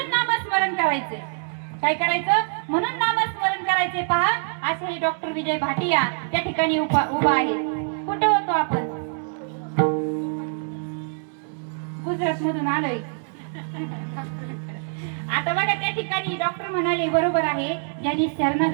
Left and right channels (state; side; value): silent; left; 60 dB below the other